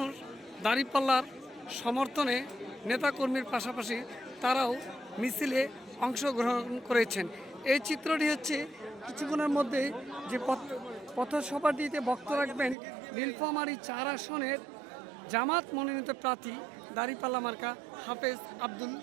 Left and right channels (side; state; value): left; drops out; at 12.8 s